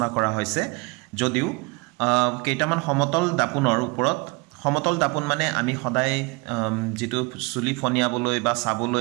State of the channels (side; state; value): left; quieter; 27.6 dB